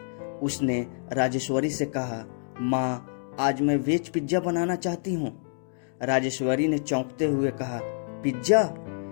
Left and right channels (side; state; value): right; silent; digital silence